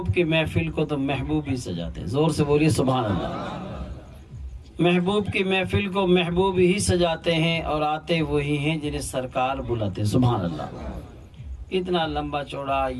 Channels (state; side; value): identical; both; correlation 1.00